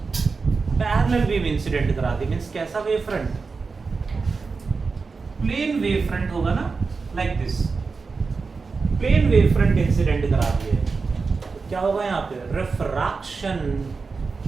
पैरेलल वेव इंसिडेंट करा दी, मींस कैसा wave front, plane wave front होगा ना, like this plane wave front incident करा दिए, तो क्या होगा यहाँ पे, रिफ्रैक्शन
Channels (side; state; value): left; quieter; 4.6 dB